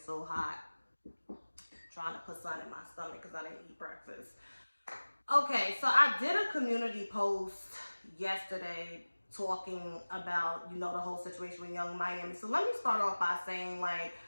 hot. I'm trying to put sun in my stomach because I didn't eat breakfast. Okay, so I did a community post yesterday talking about, the whole situation with Young Miami. So let me start off by saying, I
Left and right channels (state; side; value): inverted; both; correlation -1.00